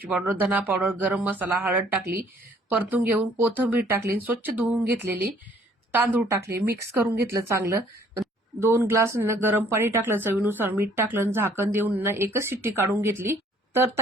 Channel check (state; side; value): normal; both; correlation 0.60